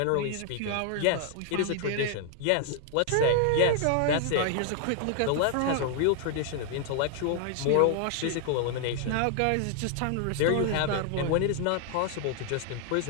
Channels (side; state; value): both; different; correlation 0.00